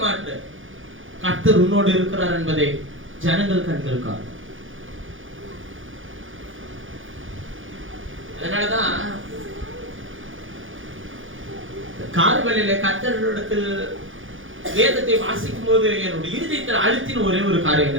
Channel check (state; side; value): late; left; 0.58 ms